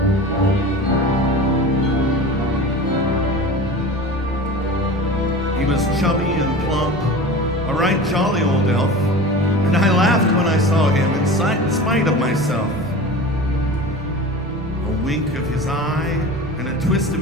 He was chubby and plump, a right jolly old elf, and I laughed when I saw him in spite of myself. A wink of his eye and a twist of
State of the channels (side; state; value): both; normal; correlation 0.34